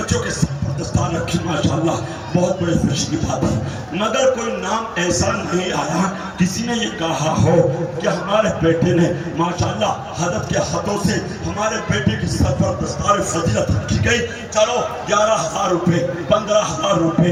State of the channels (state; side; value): identical; both; correlation 1.00